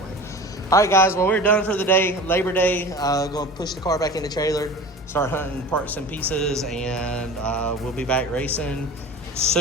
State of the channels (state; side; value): normal; both; correlation 0.35